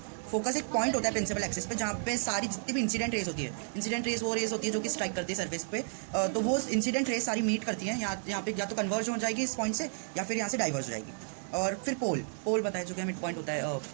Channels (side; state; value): left; silent; digital silence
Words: फोकस एक पॉइंट होता है प्रिंसिपल एक्सिस पे जहाँ पे सारी जितनी भी इंसिडेंट रेस होती है, इंसिडेंट रेस वो रेस होती है जो कि स्ट्राइक करती है सरफेस पे, तो वो इंसिडेंट रेस सारी मीट करती हैं यहाँ पे, या तो कन्वर्ज हो जाएगी इस पॉइंट से या फिर यहाँ से डाइवर्ज हो जाएगी। और फिर पोल बताया जो कि मिड पॉइंट होता है